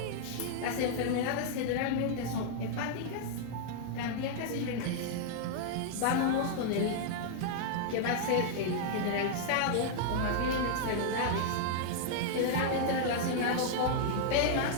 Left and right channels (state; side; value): different; both; correlation -0.01